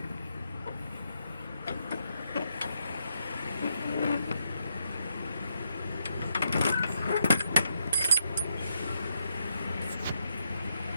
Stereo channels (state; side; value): inverted; both; correlation -0.78